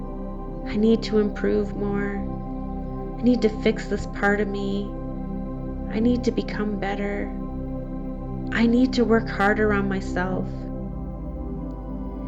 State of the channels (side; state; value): both; identical; correlation 1.00